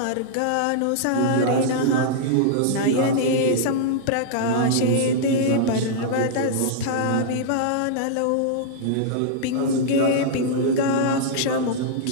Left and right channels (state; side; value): different; both; correlation -0.02